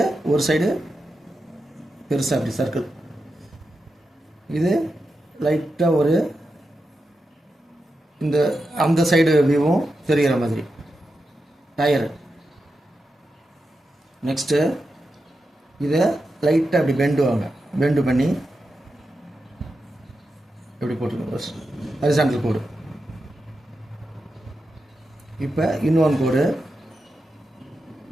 ஒரு சைடு பெருசாக அப்படி சர்க்கிள். இது லைட்டாக ஒரு இந்த அந்த சைடு வியூவும் தெரிகிற மாதிரி டயரு. நெக்ஸ்ட்டு இதை லைட்டாக அப்படி பெண்டு பண்ணி எப்படி போட்டுருங்க. ஹரிசாண்டல் கோடு. இப்போ இன்னொன்று கோடு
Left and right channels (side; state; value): both; normal; correlation 0.89